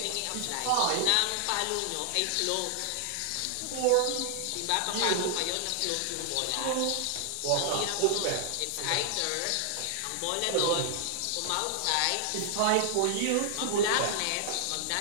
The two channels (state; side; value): different; both; correlation 0.00